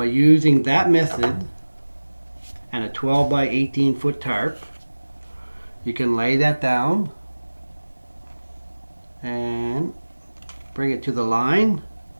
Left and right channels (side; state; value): both; inverted; correlation -1.00